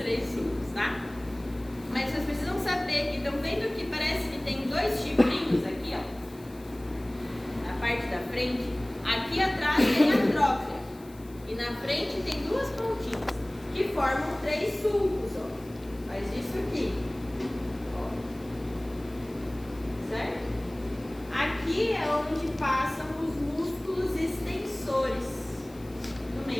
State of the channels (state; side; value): noise; left; hiss, 25 dB below the sound